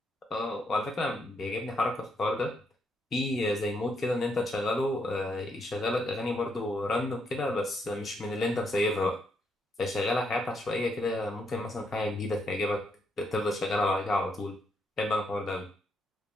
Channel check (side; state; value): both; normal; correlation 0.77